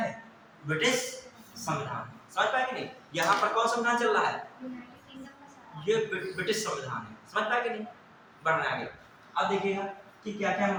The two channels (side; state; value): both; identical; correlation 1.00